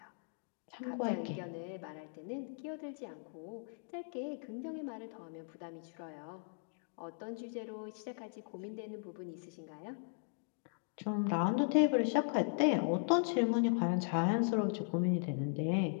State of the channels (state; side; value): silent; right; digital silence